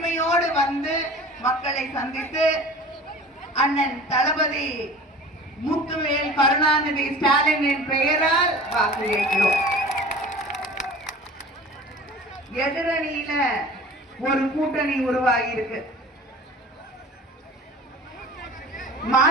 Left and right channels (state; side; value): normal; both; correlation 0.41